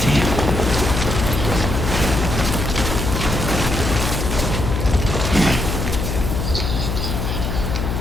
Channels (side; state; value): left; noise; hum, 2 dB below the sound